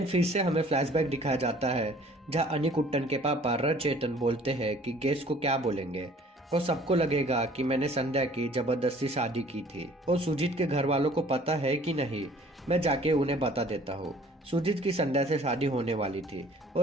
फिर से हमें फ्लैशबैक दिखाया जाता है जहाँ अनिकुट्टन के पापा रचेतन बोलते हैं कि गेस्ट को क्या बोलेंगे और सबको लगेगा कि मैंने संध्या की जबरदस्ती शादी की थी और सुजीत के घर वालों को पता है कि नहीं, मैं जाके उन्हें बता देता हूँ। सुजीत की संध्या से शादी होने वाली थी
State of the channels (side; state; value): both; normal; correlation 0.53